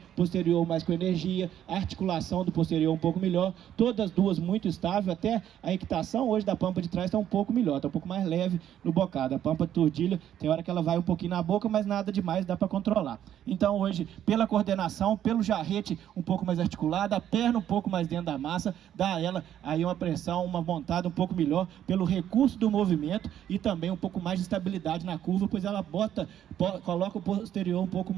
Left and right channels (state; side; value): quieter; left; 10.7 dB